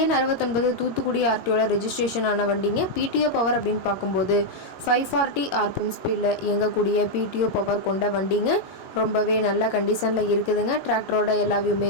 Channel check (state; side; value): late; right; 22 ms